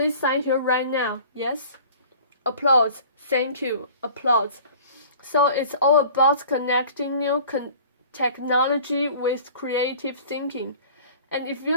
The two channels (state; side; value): inverted; both; correlation -0.46